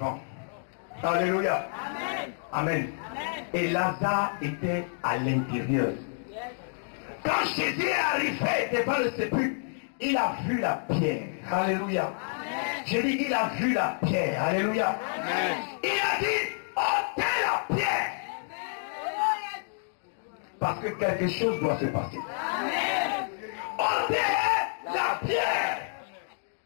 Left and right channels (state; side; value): silent; right; digital silence